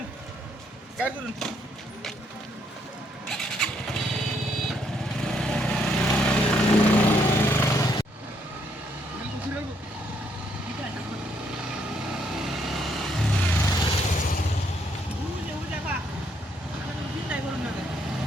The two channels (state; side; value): normal; both; correlation 0.72